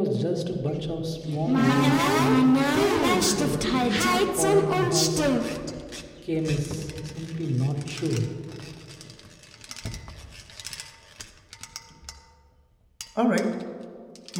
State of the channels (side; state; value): both; identical; correlation 1.00